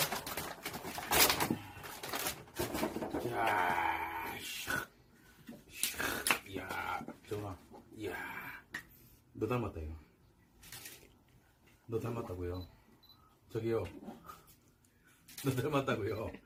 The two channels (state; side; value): identical; both; correlation 1.00